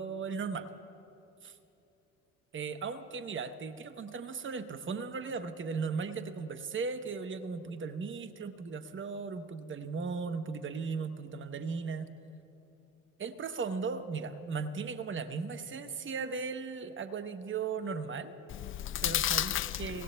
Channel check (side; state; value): both; normal; correlation 0.26